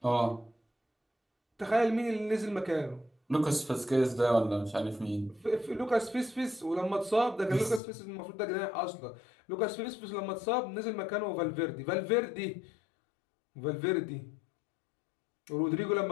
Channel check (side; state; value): right; drops out; at 7.8 s